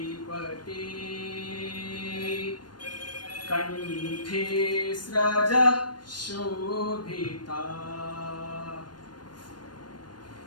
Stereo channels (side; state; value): right; late; 0.71 ms